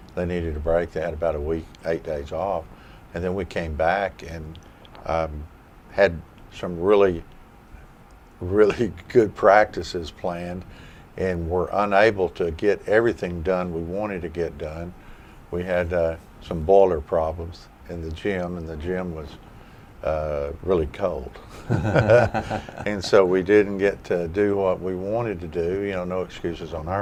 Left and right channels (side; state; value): both; identical; correlation 1.00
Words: They needed a break. They had about a week, 8 days off. And then we came back and had some really, really good practices planned, and were unable to get everything done we wanted to get done. We had some boiler problems in the gym, and the gym was really cold. And so we didn't get to do what we wanted to do. You know, no excuses on